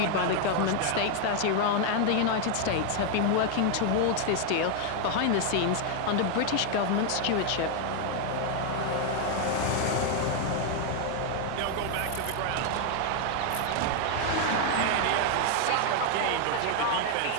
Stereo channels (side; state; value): both; different; correlation 0.00